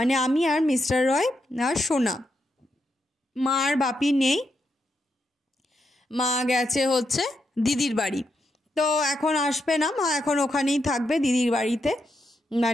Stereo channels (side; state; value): both; normal; correlation 0.83